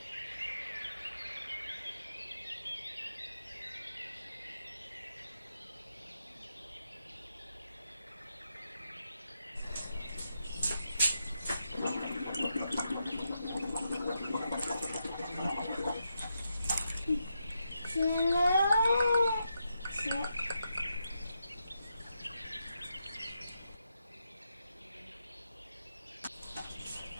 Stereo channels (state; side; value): inverted; both; correlation -0.84